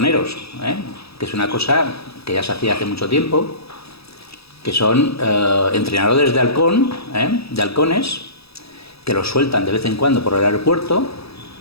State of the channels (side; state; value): right; late; 0.77 ms